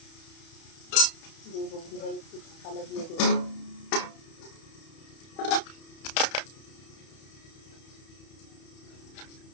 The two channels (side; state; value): right; late; 31 ms